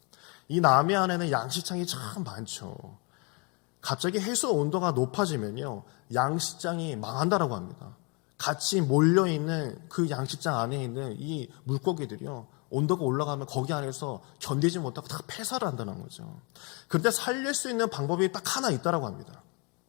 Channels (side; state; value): right; quieter; 31.9 dB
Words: 이 남해안에는 양식장이 참 많죠. 갑자기 해수 온도가 높아지면요, 양식장이 망한다라고 합니다. 같이 몰려있는 그 양식장 안에 있는 이 물고기들이요, 온도가 올라가면 거기 안에서 견디지 못하고 다 폐사를 한다는 거죠. 그런데 살릴 수 있는 방법이 딱 하나 있다라고 합니다.